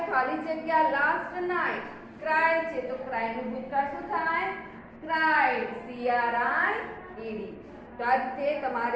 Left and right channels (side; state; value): both; identical; correlation 1.00